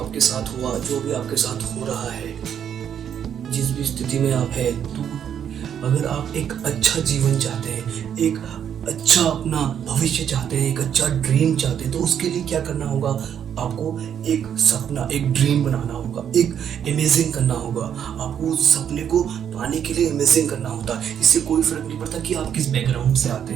साथ हुआ, जो भी आपके साथ हो रहा है, जिस भी स्थिति में आप है, तो अगर आप एक अच्छा जीवन चाहते हैं, एक अच्छा अपना भविष्य चाहते हैं, एक अच्छा ड्रीम चाहते हैं, तो उसके लिए क्या करना होगा? आपको एक सपना, एक ड्रीम बनाना होगा, एक इमेजिन करना होगा। आपको उस सपने को पाने के लिए इमेजिन करना होता है। इससे कोई फर्क नहीं पड़ता कि आप किस बैकग्राउंड से आते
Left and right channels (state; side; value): quieter; left; 8.8 dB